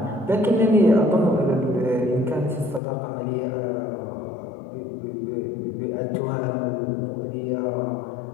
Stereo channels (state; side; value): drops out; right; at 2.8 s